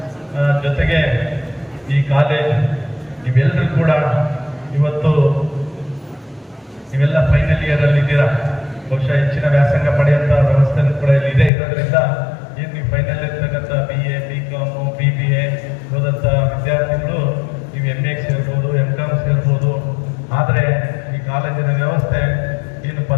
ಜೊತೆಗೆ ಈ ಕಾಲೇಜ್ ನೀವೆಲ್ಲರೂ ಕೂಡ ಇವತ್ತು ನೀವೆಲ್ಲ ಫೈನಲ್ ಇಯರ್ ಅಲ್ಲಿ ಇದ್ದೀರಾ. ಬಹುಶಃ ಹೆಚ್ಚಿನ ವ್ಯಾಸಂಗ ಪಡೆಯುವಂಥ ವ್ಯವಸ್ಥೆ ಕೂಡ ಇಲ್ಲಿ ಇದೆ. ಇರೋದ್ರಿಂದ ಏನು ನೀವು ಫೈನಲ್ ಇರ್ತಕ್ಕಂಥ BA, BCom, BBA ಓದಂಥ ವಿದ್ಯಾರ್ಥಿಗಳು ನೀವು MA ಸೇರ್ಬೋದು, MCom ಸೇರ್ಬೋದು. ಆದರೆ ಈ ಕಾಲೇಜಿನ ವ್ಯವಸ್ಥೆ ಏನು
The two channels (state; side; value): drops out; right; at 11.5 s